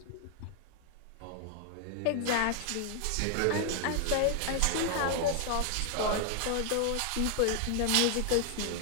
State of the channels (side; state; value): both; different; correlation 0.00